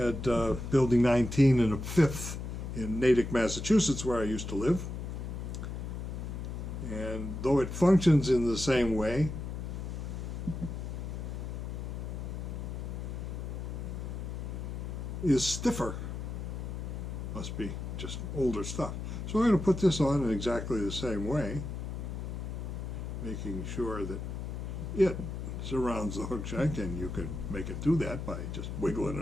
Building 19 and a 5th in Natick, Massachusetts, where I used to live. And though it functions in the same way, is stiffer. Must be just older stuff. So I'm going to put this on in exactly the same way, making sure that it surrounds the hook shank, and you can make it do that by just wiggling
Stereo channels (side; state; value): left; noise; hum, 5 dB below the sound